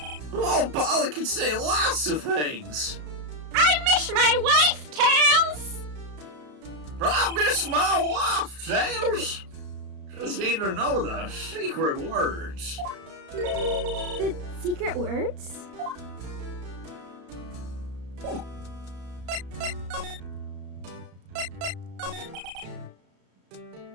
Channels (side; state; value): left; late; 34 ms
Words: Oh, Polly can say lots of things. I miss my wife, Tails! I miss my wife, James. Just need to know the secret words. The secret words?